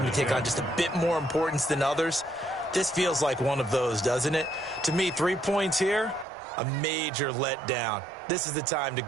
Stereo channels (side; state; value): left; drops out; at 6.2 s